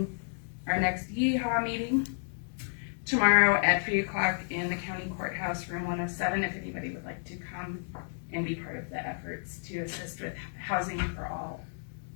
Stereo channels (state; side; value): silent; right; digital silence